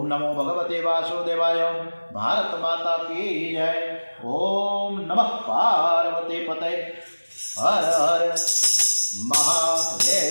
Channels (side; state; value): both; inverted; correlation -1.00